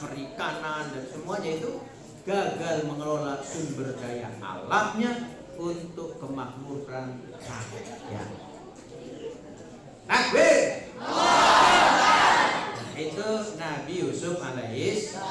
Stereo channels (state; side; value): identical; both; correlation 1.00